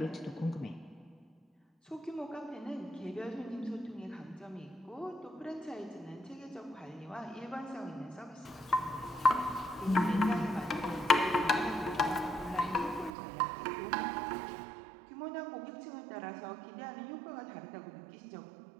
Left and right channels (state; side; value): drops out; left; at 13.2 s